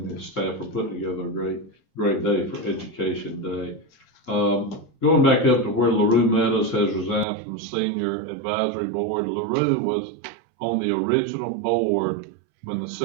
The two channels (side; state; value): left; drops out; at 7.2 s